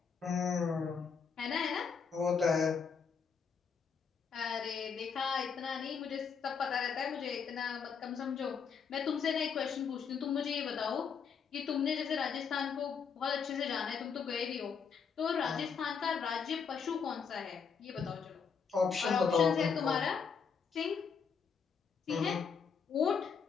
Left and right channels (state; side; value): quieter; right; 6.2 dB